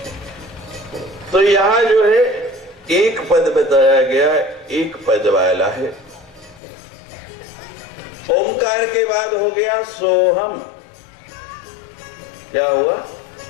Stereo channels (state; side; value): drops out; right; at 6.6 s